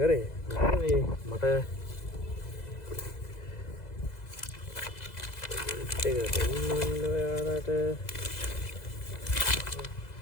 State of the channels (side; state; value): right; late; 2.0 ms